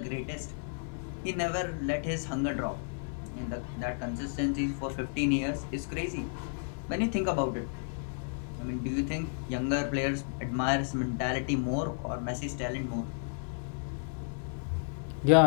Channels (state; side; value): silent; right; 56 dB below the other